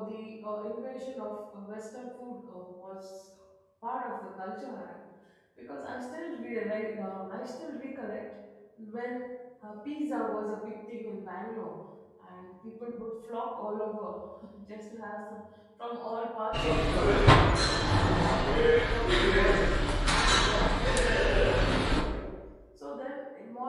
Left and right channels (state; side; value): identical; both; correlation 1.00